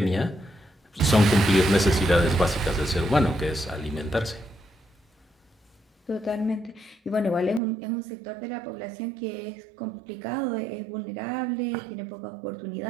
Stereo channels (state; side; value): drops out; left; at 7.6 s